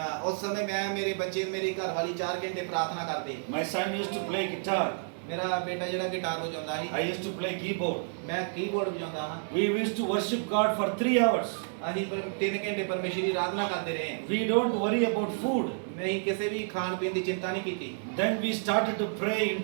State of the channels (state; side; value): silent; left; digital silence